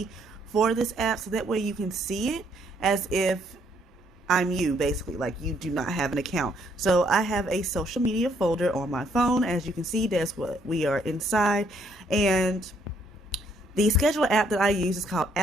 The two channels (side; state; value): both; normal; correlation 0.69